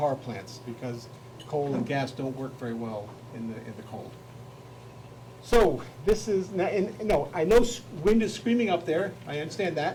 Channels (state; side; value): identical; both; correlation 1.00